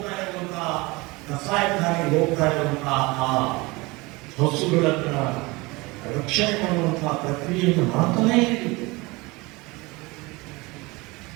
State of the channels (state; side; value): quieter; left; 23.7 dB